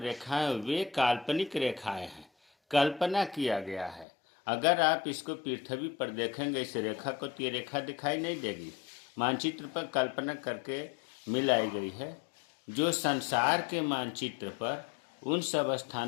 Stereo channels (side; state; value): right; drops out; at 4.0 s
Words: वे काल्पनिक रेखाएं हैं, कल्पना किया गया है। अगर आप इसको पृथ्वी पर देखेंगे इस रेखा को तो ये रेखा दिखाई नहीं देगी, मानचित्र पर कल्पना करके मिलाई गई है। जो संसार के मानचित्र पर उन सब